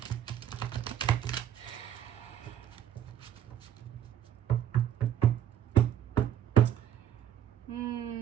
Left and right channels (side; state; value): left; quieter; 10.4 dB